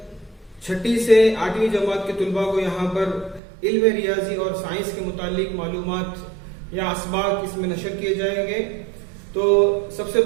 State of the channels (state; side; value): drops out; left; at 3.4 s